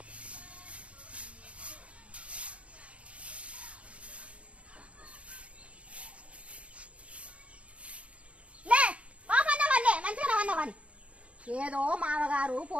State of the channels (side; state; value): left; late; 0.062 ms